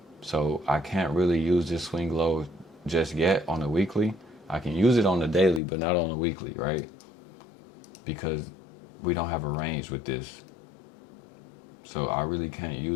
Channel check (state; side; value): drops out; right; at 5.6 s